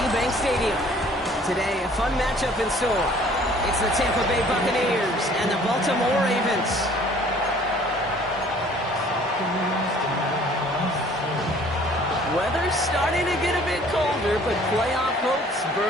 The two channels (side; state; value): both; normal; correlation 0.54